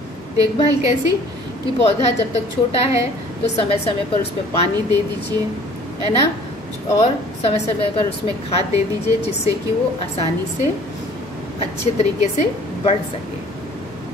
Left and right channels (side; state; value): both; normal; correlation 0.52